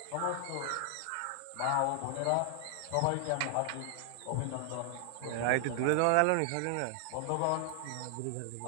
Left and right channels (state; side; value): different; both; correlation 0.00